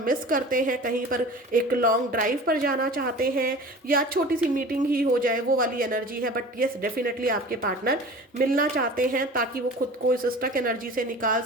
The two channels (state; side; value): normal; both; correlation 0.39